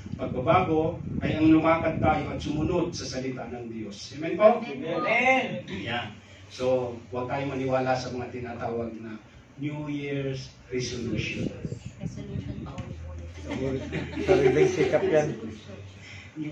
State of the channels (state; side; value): identical; both; correlation 1.00